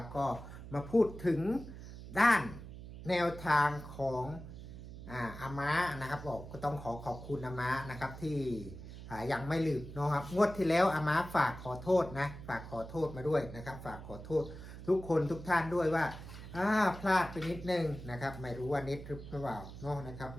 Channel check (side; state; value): right; noise; hum, 12 dB below the sound